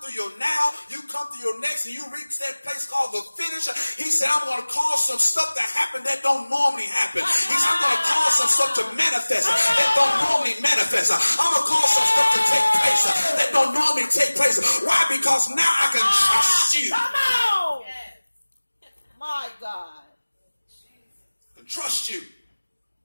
your now, you come through your next, and you reach that place called the finish. He said, I'm going to cause some stuff to happen that don't normally happen. He said, I'm going to cause some stuff to manifest that don't normally manifest. I'm going to cause some stuff to take place that don't normally take place. Why? Because now I can trust you. Come on. My God. I can trust you.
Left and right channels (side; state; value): both; inverted; correlation -1.00